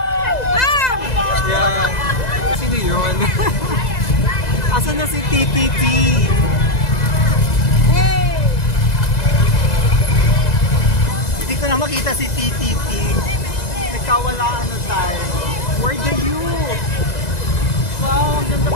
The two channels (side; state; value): right; late; 2.0 ms